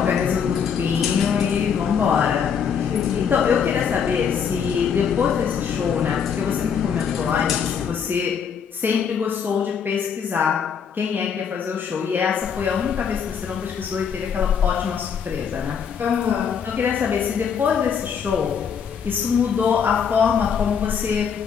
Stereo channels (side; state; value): right; quieter; 7.1 dB